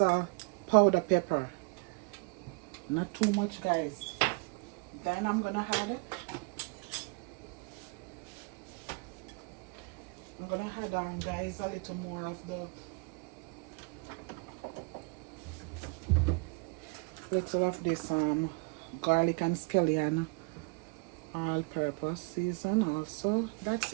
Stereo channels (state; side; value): quieter; left; 30.8 dB